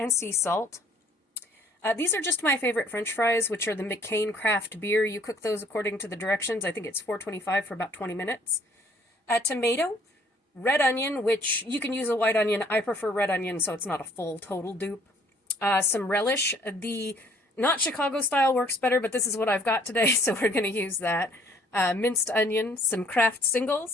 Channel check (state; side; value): normal; both; correlation 0.60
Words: sea salt. These are just my favorite French fries, which are the McCain craft beer. You cook those according to the directions. I think it's $4.25 for about 20 minutes. Tomato, red onion, which you can use a white onion. I prefer red onion, so it's not a full total dupe. Some relish. The not Chicago style works better, but this is what I've got today, so we're going to use that. Minced onion, some Kraft